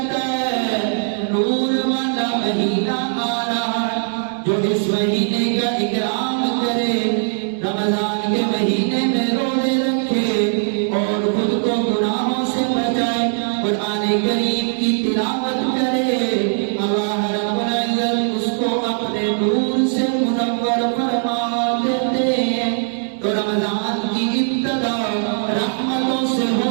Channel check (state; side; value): silent; left; digital silence